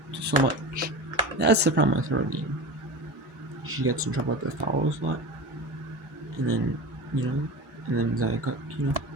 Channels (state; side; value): late; left; 1.4 ms